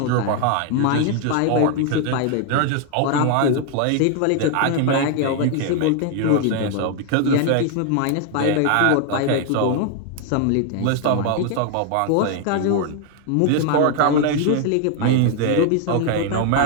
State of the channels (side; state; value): both; different; correlation 0.01